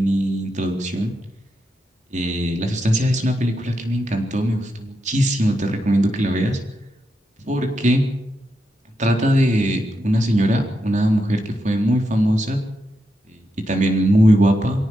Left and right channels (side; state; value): both; normal; correlation 0.85